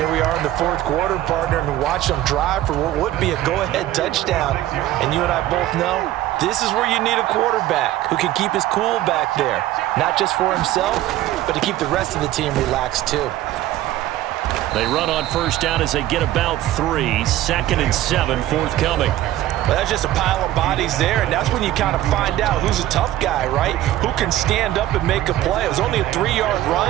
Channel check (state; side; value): quieter; left; 14.3 dB